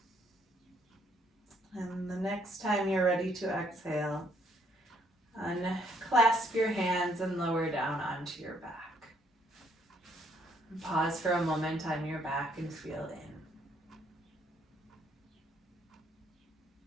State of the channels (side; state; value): both; normal; correlation 0.68